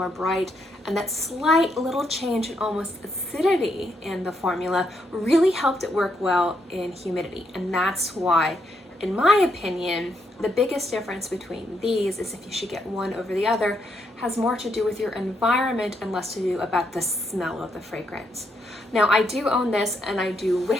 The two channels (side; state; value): both; normal; correlation 0.77